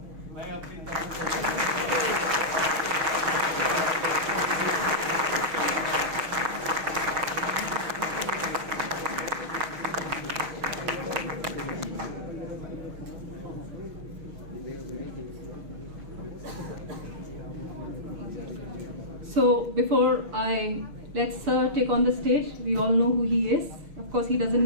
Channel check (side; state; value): left; late; 6.3 ms